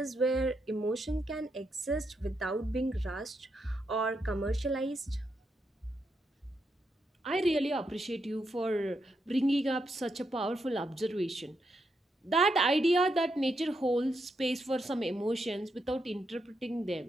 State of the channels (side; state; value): both; normal; correlation 0.81